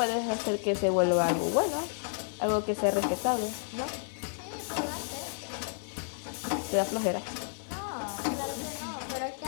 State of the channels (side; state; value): right; silent; 57 dB below the other